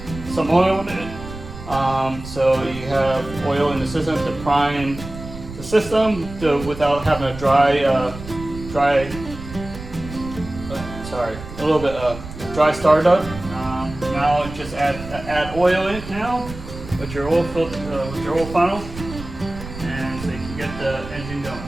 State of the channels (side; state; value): right; noise; rumble, 12 dB below the sound